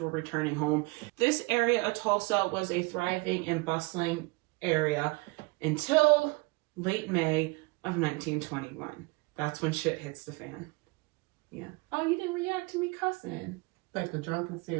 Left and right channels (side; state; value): left; quieter; 26.5 dB